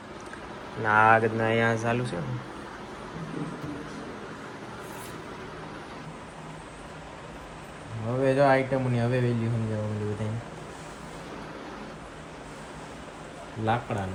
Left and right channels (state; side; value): identical; both; correlation 1.00